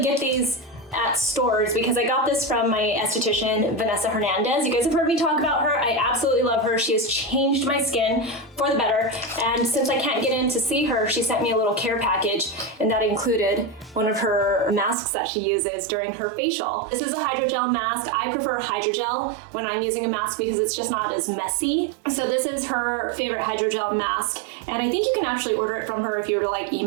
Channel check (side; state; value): left; drops out; at 15.0 s